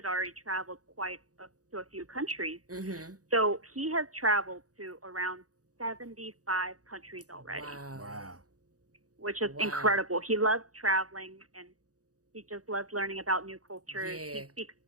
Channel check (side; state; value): left; late; 0.67 ms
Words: already traveled to a few countries. So he has traveled to around 75 countries already. Wow. Which is incredible. He loves traveling, and he just loves learning about new cultures. He speaks